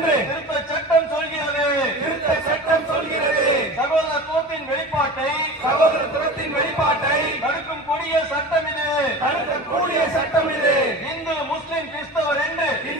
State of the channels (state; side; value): normal; both; correlation 0.34